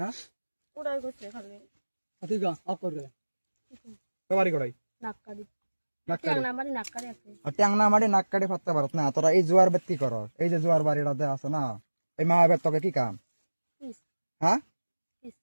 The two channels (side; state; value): both; inverted; correlation -1.00